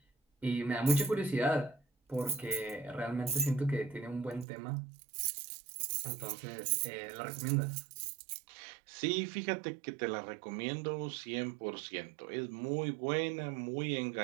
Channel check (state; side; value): drops out; left; at 4.5 s